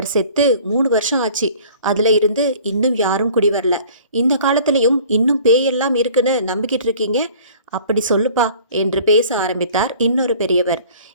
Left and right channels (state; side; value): inverted; both; correlation -0.49